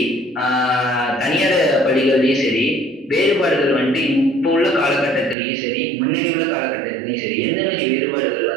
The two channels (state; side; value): drops out; left; at 5.4 s